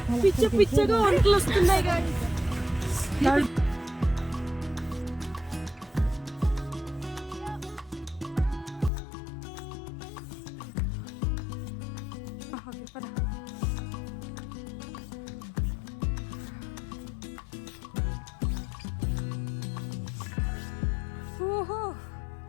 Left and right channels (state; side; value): drops out; right; at 8.9 s